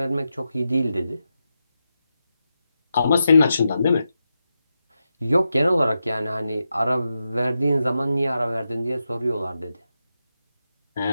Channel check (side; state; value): both; inverted; correlation -0.89